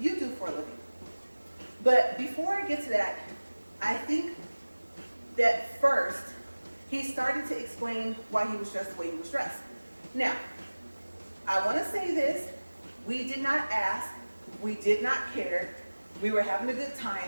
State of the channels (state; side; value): inverted; both; correlation -1.00